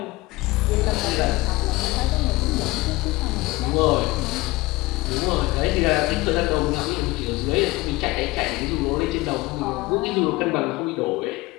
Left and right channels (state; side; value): quieter; right; 21.1 dB